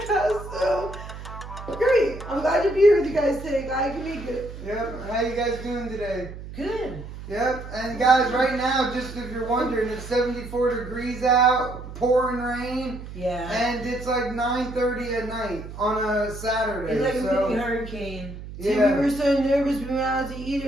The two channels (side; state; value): right; noise; hum, 12 dB below the sound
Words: so great. I'm glad to be here with you guys today. Glad I can make it. Yep. How you guys doing today? Good. Yep. And guys, right now, just if you're wondering, it's 74 degrees out, pouring rain. Yeah. And it's like 9:30 at night on a Saturday. It's like a mini hurricane. Yeah. See, we were so nervous. We went out to eat